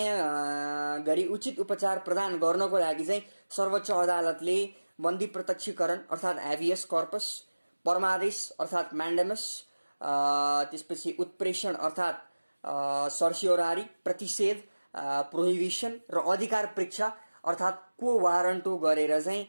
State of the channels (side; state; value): both; inverted; correlation -1.00